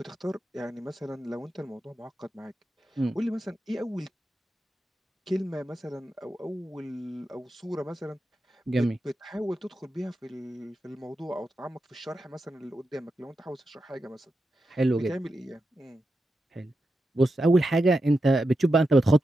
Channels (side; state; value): both; normal; correlation 0.88